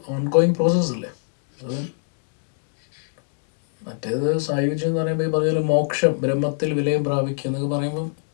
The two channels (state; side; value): silent; right; digital silence